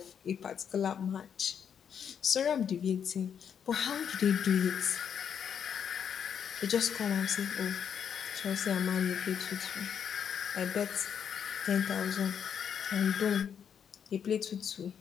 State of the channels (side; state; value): right; quieter; 7.9 dB